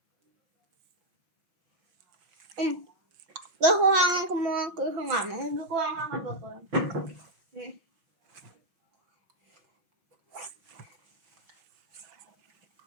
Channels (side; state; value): left; late; 5.9 ms